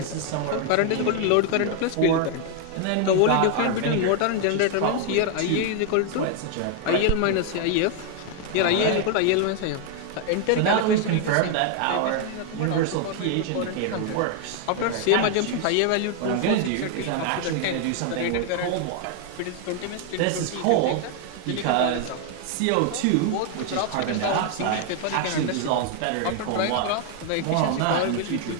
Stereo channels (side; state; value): both; different; correlation 0.00